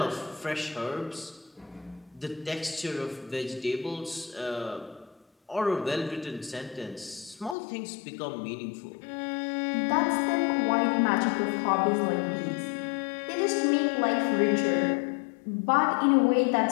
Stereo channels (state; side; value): drops out; right; at 7.6 s